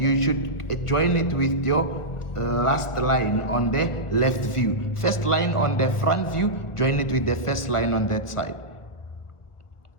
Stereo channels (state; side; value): late; right; 1.4 ms